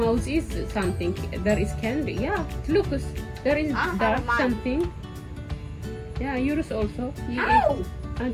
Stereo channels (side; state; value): both; identical; correlation 1.00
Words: is something. There is candy. Yeah, look, there is dark mine. something. Yeah, yours also. You Ow! ate. I